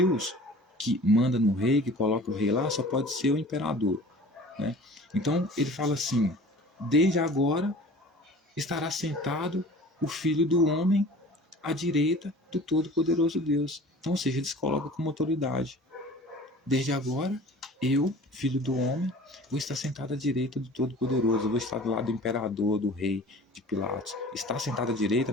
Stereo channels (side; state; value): both; normal; correlation 0.43